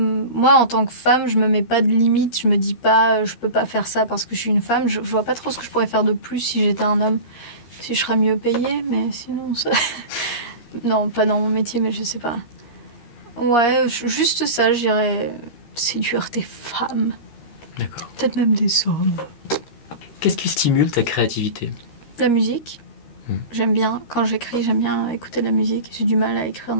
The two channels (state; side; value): late; right; 13 ms